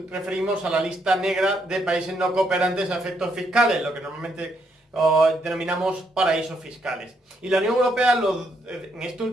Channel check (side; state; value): both; normal; correlation 0.75